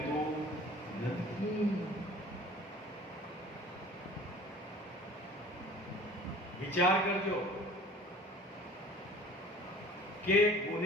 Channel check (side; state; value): both; normal; correlation 0.46